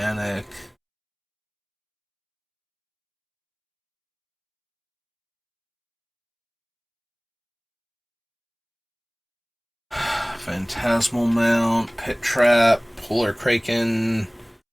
Phantasmal Mount, Pit Trap, Polar Kraken,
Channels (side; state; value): both; identical; correlation 1.00